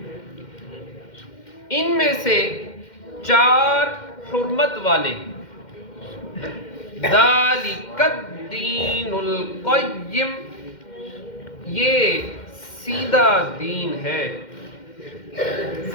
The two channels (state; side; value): late; right; 2.1 ms